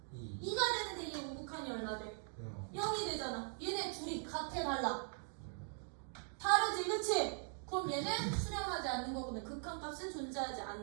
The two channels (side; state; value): left; silent; 50 dB below the other